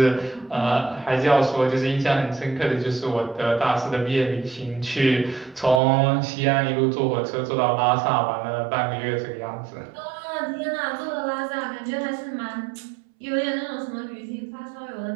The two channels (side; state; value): left; drops out; at 5.8 s